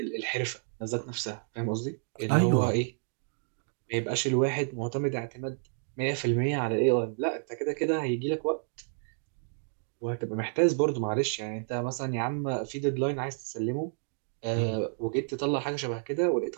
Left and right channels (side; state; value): left; silent; digital silence